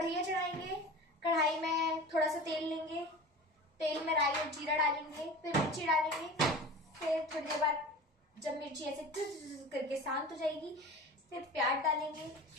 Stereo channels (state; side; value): normal; both; correlation 0.35